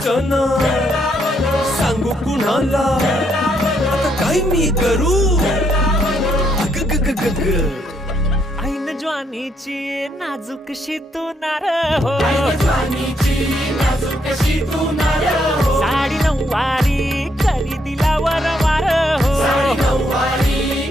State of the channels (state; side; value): normal; both; correlation 0.74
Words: सांगू कुणाला आता काय मी करू अग ग ग ग ग ऐन ज्वानीची नाजूकशी तू नार हो साडी नऊवारी करी दिला वरवार हो